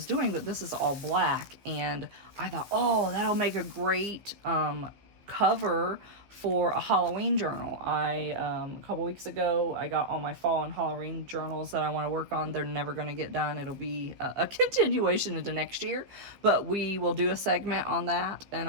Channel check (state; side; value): late; left; 15 ms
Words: doing, but this is all black, and I thought, oh, that'll make a great cover for a Halloween journal. A couple weeks ago, I got all my fall and Halloween journals that I want to work on. They're never going to get done. It'll be a continuation into next year, but we will do a segment on that, and